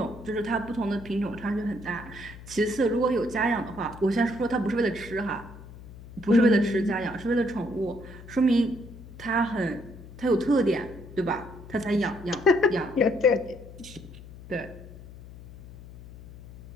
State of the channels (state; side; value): noise; left; hum, 17 dB below the sound